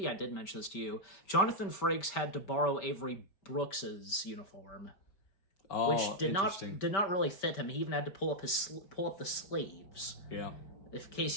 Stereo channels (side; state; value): right; late; 5.1 ms